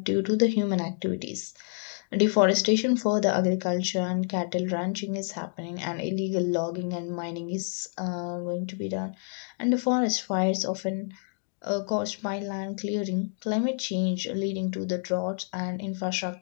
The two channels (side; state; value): right; silent; 59 dB below the other